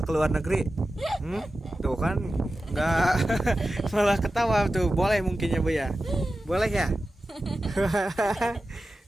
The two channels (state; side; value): normal; both; correlation 0.93